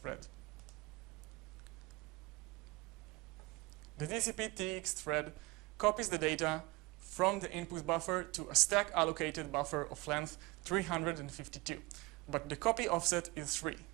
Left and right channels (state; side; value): quieter; left; 22.9 dB